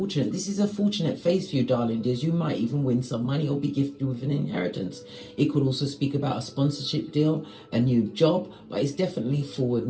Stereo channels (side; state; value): both; identical; correlation 1.00